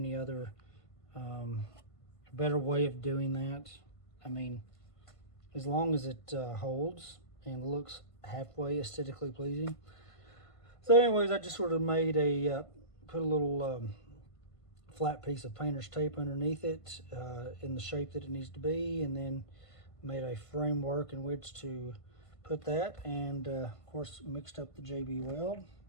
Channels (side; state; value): right; late; 1.5 ms